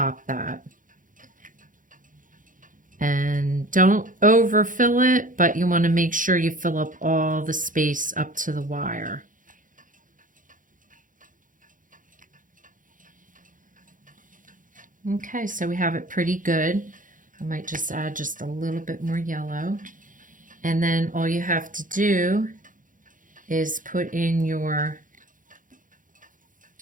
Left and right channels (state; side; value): late; left; 0.38 ms